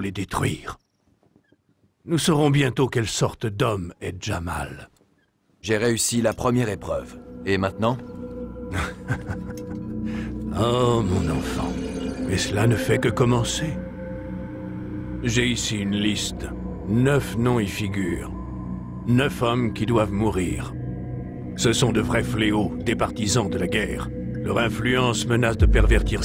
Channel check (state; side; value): identical; both; correlation 1.00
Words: les détruire. Nous saurons bientôt quelle sorte d'homme est Jamal. J'ai réussi la première épreuve. Et maintenant? Oh, mon enfant. Mais cela ne fait que commencer. J'ai ici une liste. 9 noms y figurent. 9 hommes qui doivent mourir. Ce sont de vrais fléaux, des partisans de la guerre. Leur influence menace de pervertir